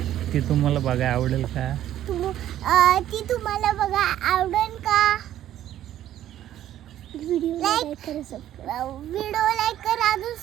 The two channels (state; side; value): quieter; left; 12.1 dB